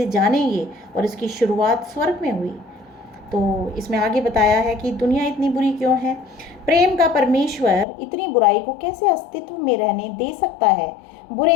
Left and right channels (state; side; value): drops out; right; at 7.9 s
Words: जानेंगे और इसकी शुरुआत स्वर्ग में हुई। तो इसमें आगे बताया है कि दुनिया इतनी बुरी क्यों है? प्रेम का परमेश्वर इतनी बुराई को कैसे अस्तित्व में रहने दे सकता है?